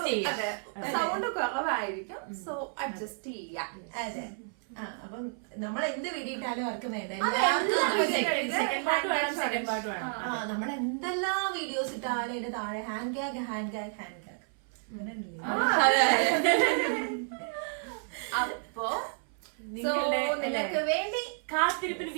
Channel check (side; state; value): left; silent; 57 dB below the other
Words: ചെയ്യാം. സൗണ്ട് കുറവായിരിക്കും, സോ അഡ്ജസ്റ്റ് ചെയ്യാം. അതെ. അപ്പം നമ്മൾ എന്ത് വീഡിയോ ഇട്ടാലും ആർക്കും വേണ്ട. സെക്കൻഡ് പാർട്ട് വേണം, സെക്കൻഡ് പാർട്ട് വേണം. നമ്മൾ എന്തെല്ലാം വീഡിയോസ് ഇട്ടാലും അതിന്റെ താഴെ hand gag hand gag hand gag. അപ്പോ നിങ്ങളുടെ നിനക്ക് വേണ്ടി കാത്തിരിപ്പിന്